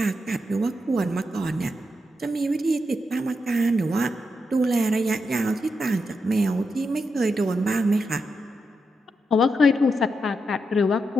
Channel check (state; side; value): normal; both; correlation 0.85